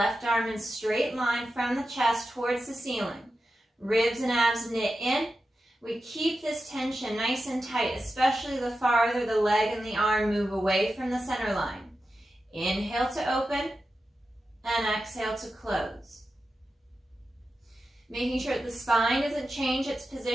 arm in straight line from the chest towards the ceiling. Ribs and abs knit in. We keep this tension nice and tight, especially the farther the leg and the arm move away from the center line. Inhale to open and exhale to close. Making sure that the spine doesn't change its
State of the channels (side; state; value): both; normal; correlation 0.91